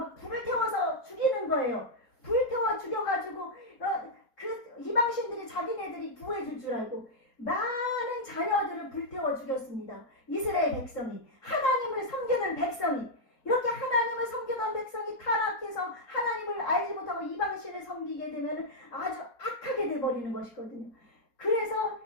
불을 태워서 죽이는 거예요. 불 태워 죽여가지고 그 이방신들이 자기네들이 구해줄 줄 알고 많은 자녀들을 불태워 죽였습니다. 이스라엘 백성이 하나님을 섬기는 백성이 이렇게 하나님을 섬기던 백성이 타락해서 하나님을 알지 못하고 이방신을 섬기게 되면 아주 악하게 돼버리는 것이거든요. 그래서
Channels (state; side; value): late; right; 4.2 ms